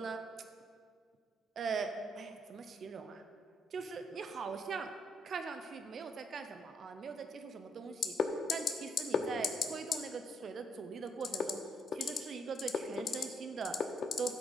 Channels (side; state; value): both; normal; correlation 0.73